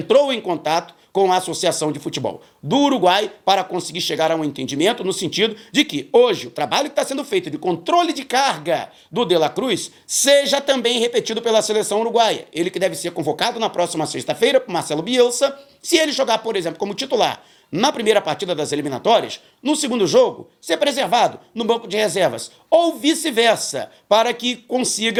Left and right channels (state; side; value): identical; both; correlation 1.00